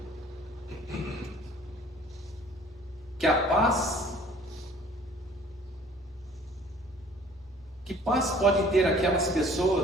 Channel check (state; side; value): normal; both; correlation 0.53